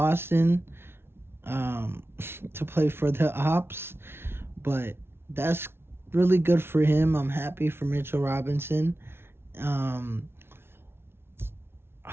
um, to play for the Ops. But that's really good for him. I'm happy for Mitchell Robinson. Um,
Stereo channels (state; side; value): late; left; 0.12 ms